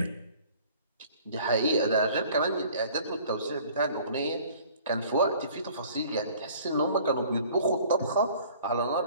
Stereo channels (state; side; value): inverted; both; correlation -0.51